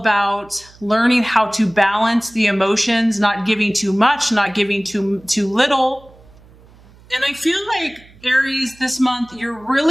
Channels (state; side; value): noise; right; hum, 26 dB below the sound